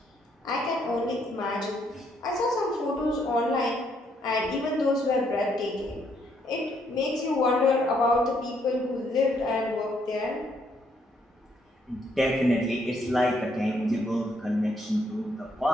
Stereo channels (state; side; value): normal; both; correlation 0.71